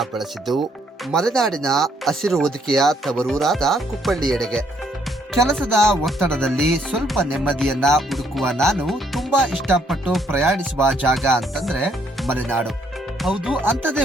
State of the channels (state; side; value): normal; both; correlation 0.69